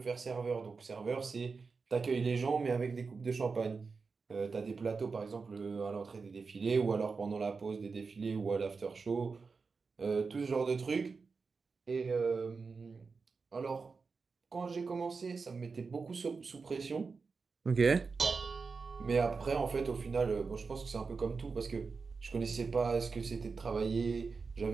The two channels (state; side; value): quieter; left; 4.7 dB